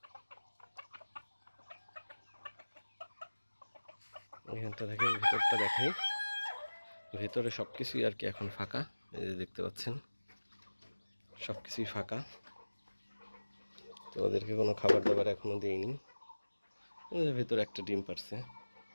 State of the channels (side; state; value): both; inverted; correlation -1.00